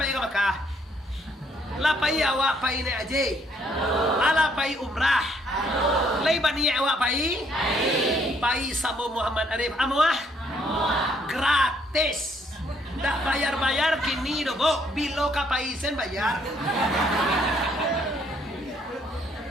yang Makkah? La pai awak pai ni aja. Ala pai umrah. Lai bani awak pai. Pai sama Muhammad Arif amuah. Gratis. Tak bayar kini dobo. Bilo kapaisen bayar.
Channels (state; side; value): normal; both; correlation 0.68